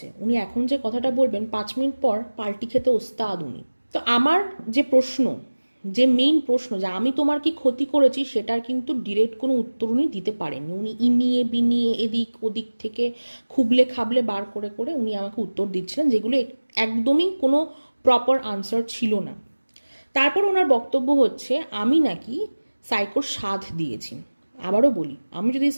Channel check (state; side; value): inverted; both; correlation -1.00